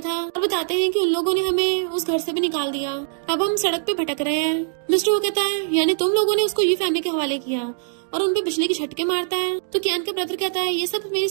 और बताते हैं कि उन लोगों ने हमें उस घर से भी निकाल दिया, अब हम सड़क पे भटक रहे हैं। मिस्टर वो कहता है, यानी तुम लोगों ने उसको ये फैमिली के हवाले किया और उनपे बिजली के झटके मारता है। तो कियान का ब्रदर कहता है, ये सब मेरी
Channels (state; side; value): silent; left; digital silence